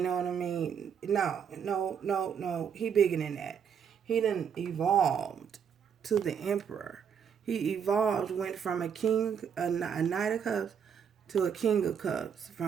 know what I mean? No. He bigger than that. He done evolved to the emperor. He evolved, went from a king, a knight of cups, to a king of cups.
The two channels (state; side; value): quieter; left; 7.5 dB